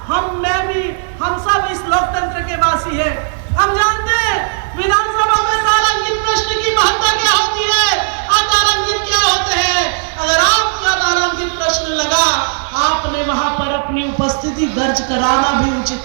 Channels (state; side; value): silent; left; digital silence